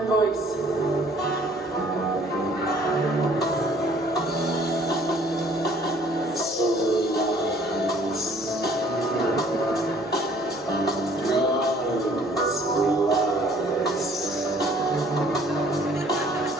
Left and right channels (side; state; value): both; normal; correlation 0.57